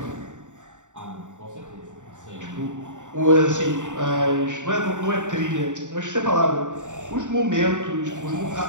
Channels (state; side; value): late; left; 0.86 ms